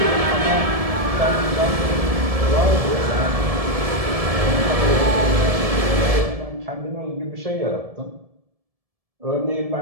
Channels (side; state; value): left; late; 1.7 ms